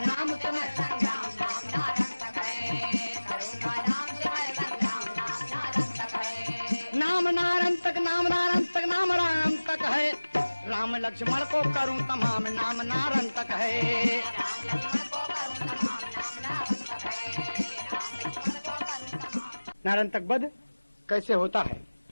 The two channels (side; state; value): both; inverted; correlation -1.00